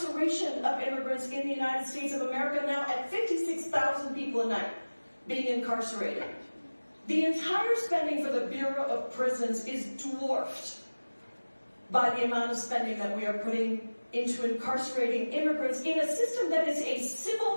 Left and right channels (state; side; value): inverted; both; correlation -1.00